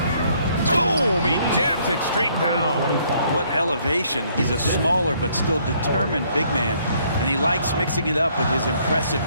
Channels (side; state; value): both; inverted; correlation -0.66